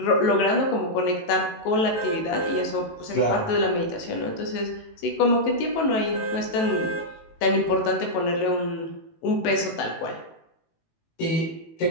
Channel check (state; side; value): late; right; 18 ms